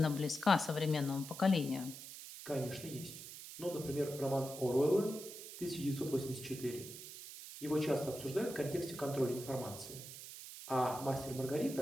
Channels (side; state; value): right; noise; hiss, 12 dB below the sound